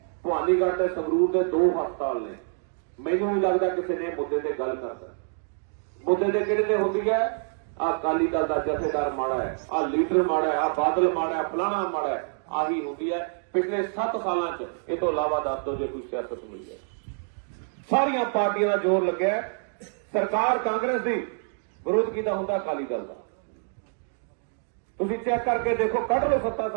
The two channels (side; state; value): left; silent; 60 dB below the other